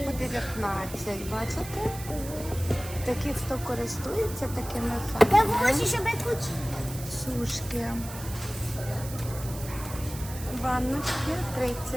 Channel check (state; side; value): noise; right; hiss, 13 dB below the sound